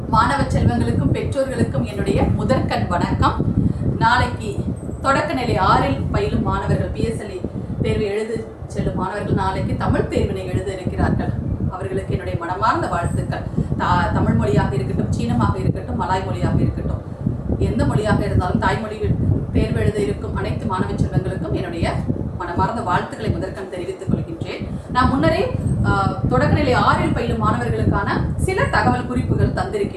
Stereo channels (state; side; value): identical; both; correlation 1.00